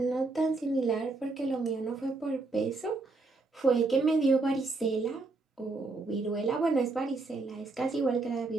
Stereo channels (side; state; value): left; quieter; 3.5 dB